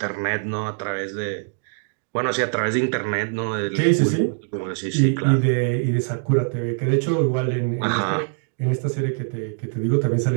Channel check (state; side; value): silent; left; 61 dB below the other